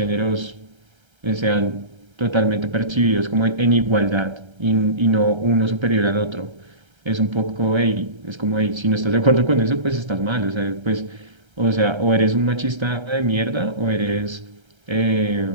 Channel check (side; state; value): left; late; 1.3 ms